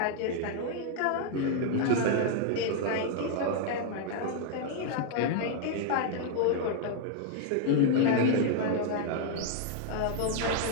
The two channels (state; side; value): different; both; correlation 0.00